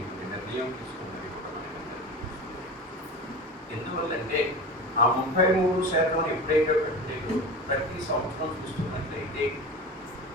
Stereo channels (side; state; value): both; normal; correlation 0.30